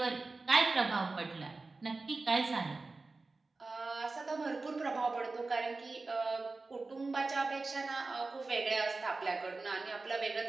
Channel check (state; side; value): quieter; left; 3.6 dB